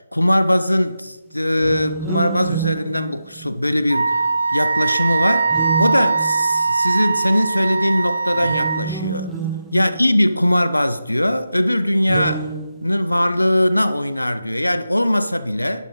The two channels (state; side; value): inverted; both; correlation -0.91